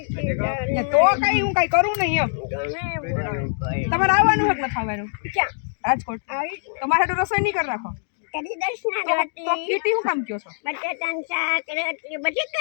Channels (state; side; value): silent; right; digital silence